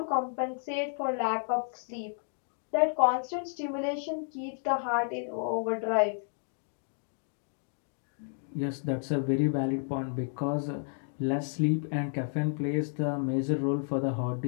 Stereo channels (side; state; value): right; silent; 57 dB below the other